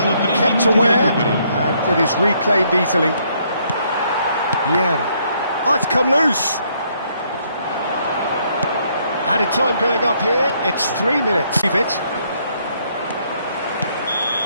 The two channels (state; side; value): inverted; both; correlation -0.69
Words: kept aware, and it is reclaimed easily. Yeah. Oh, it's come loose. Added time going up here, it's 3 minutes. Leave it.